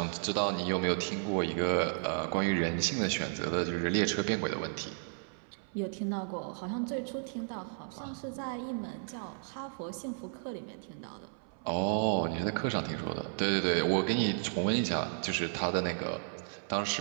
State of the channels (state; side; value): silent; left; 55 dB below the other